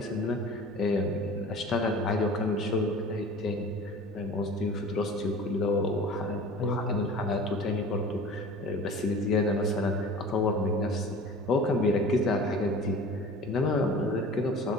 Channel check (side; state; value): both; normal; correlation 0.41